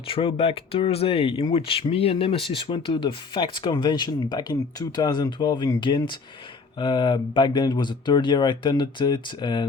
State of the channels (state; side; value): quieter; right; 4.7 dB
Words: Thursday in which me and Nemesis went to the Facts Convention back in 2012 in Ghent. Back then it was the third year I attended it